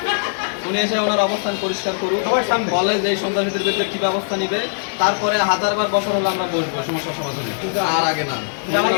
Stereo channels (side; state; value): right; silent; digital silence